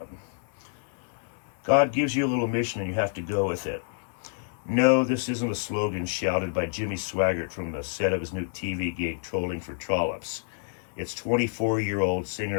God gives you a little mission and you have to go with it. No, this isn't a slogan shouted by Jimmy Swaggart from the set of his new TV gig, Trolling for Trollops. It's 24-year-old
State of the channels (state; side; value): silent; right; 59 dB below the other